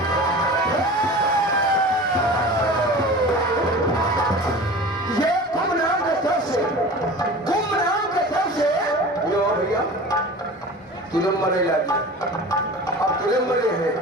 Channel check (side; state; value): both; normal; correlation 0.37